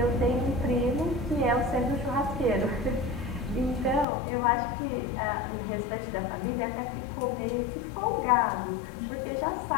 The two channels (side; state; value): right; drops out; at 4.0 s